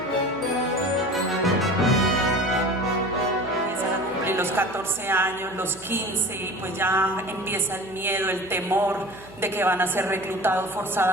Los 14 años, los 15, y pues ya empieza el miedo, el temor de que van a ser reclutados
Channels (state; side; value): noise; right; hum, 22 dB below the sound